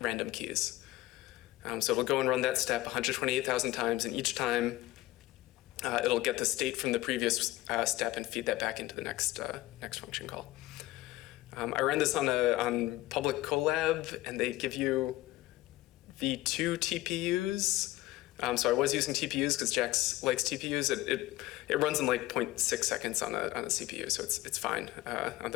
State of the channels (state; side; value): quieter; right; 17.7 dB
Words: keys. So it'll go and run that step 128,000 times, and each time it'll get the state from the previous step and feed that back into the next function call. I ran this on public Colab, and they give you V2 TPUs. So I was using TPUs because JAX likes TPUs. It runs in like 0.6 seconds on a CPU, so it's fine on